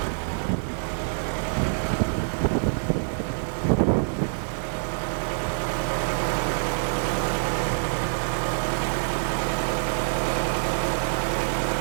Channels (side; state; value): left; silent; digital silence